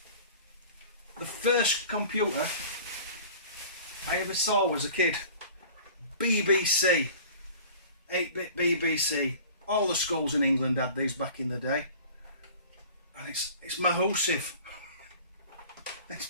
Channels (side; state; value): both; inverted; correlation -0.44